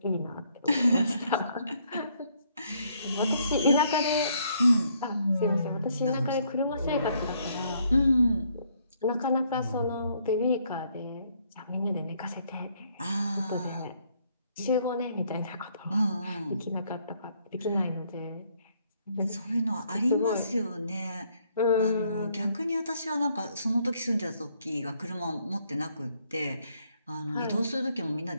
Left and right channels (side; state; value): both; inverted; correlation -0.69